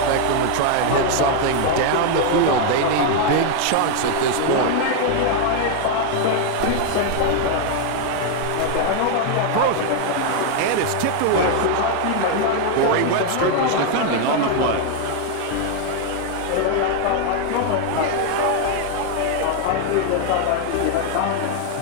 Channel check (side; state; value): both; different; correlation 0.00